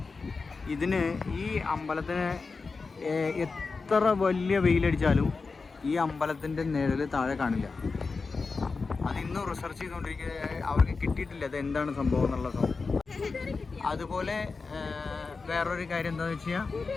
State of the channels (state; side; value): quieter; right; 4.4 dB